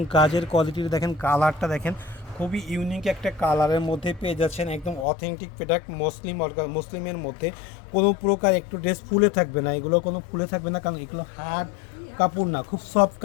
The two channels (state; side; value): drops out; right; at 5.1 s